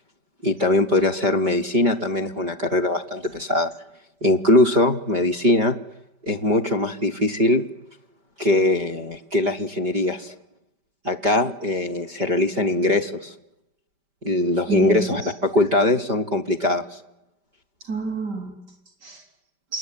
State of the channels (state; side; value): late; left; 5.1 ms